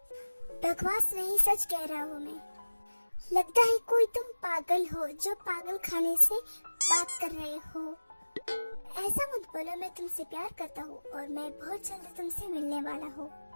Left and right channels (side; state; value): both; inverted; correlation -1.00